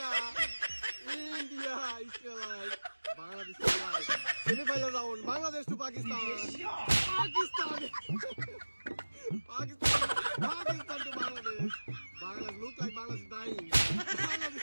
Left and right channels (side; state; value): both; inverted; correlation -1.00